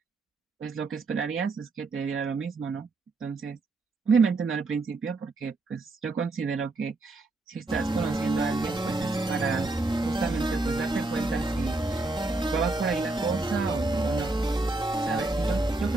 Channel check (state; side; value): quieter; left; 3.2 dB